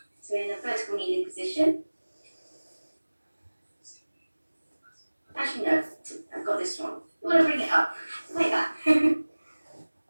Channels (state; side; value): inverted; both; correlation -1.00